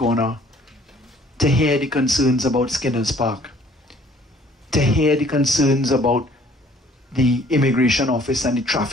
to hear the concerns about Skinner's Park, to hear the concerns about the immigration office and the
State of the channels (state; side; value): normal; both; correlation 0.57